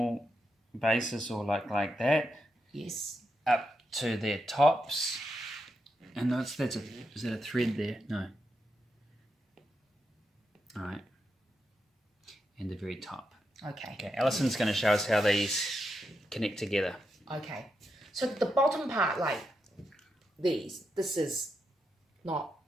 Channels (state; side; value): normal; both; correlation 0.85